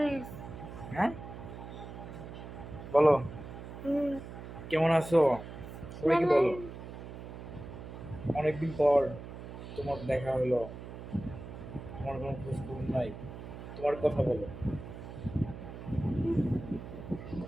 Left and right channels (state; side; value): noise; right; hum, 11 dB below the sound